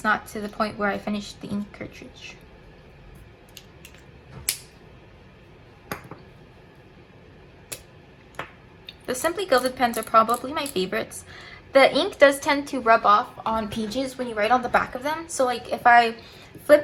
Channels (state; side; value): identical; both; correlation 1.00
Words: not to the point where I finished the ink cartridge. The Simply Gilded pens are probably my favorites. The ink does tend to rub off on pages when you write on the back of them. So like if I flip